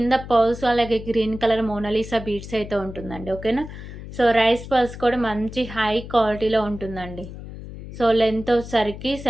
పర్ల్స్ అలాగే గ్రీన్ కలర్ మోనాలిసా బీడ్స్ అయితే ఉంటుందండి. ఓకేనా? సో, రైస్ పర్ల్స్ కూడా మంచి హై క్వాలిటీలో ఉంటుందండి. సో, లెంత్ వచ్చేసరికి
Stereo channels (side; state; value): left; noise; hum, 12 dB below the sound